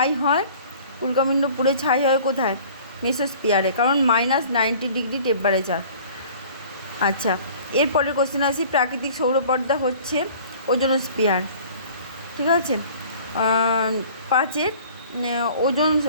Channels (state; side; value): inverted; both; correlation -0.48